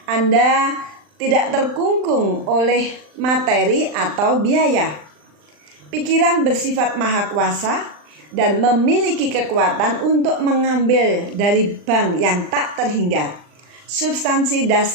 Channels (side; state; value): left; late; 39 ms